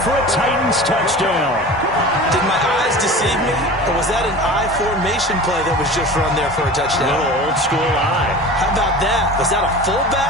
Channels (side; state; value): both; normal; correlation 0.36